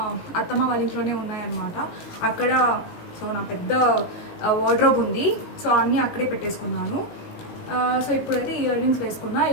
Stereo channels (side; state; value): right; late; 18 ms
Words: అత్తమ్మ వాళ్ళ ఇంట్లోనే ఉన్నాయన్నమాట. అక్కడ సో నా పెద్ద వార్డ్రోబ్ ఉంది. సో అన్నీ అక్కడే పెట్టేసుకున్నాను. సో ఇప్పుడైతే ఇయర్ రింగ్స్ వేసుకున్నా.